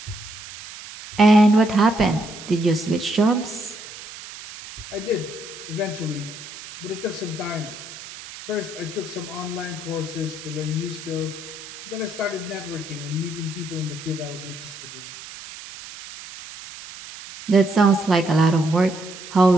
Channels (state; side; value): noise; right; hiss, 14 dB below the sound